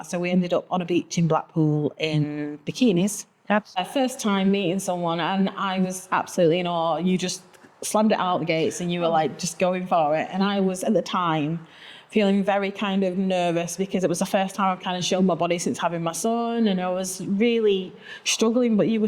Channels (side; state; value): both; identical; correlation 1.00